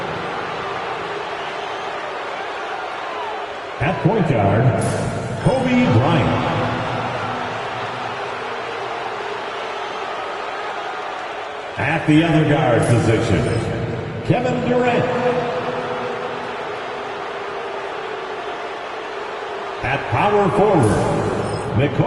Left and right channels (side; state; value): both; identical; correlation 1.00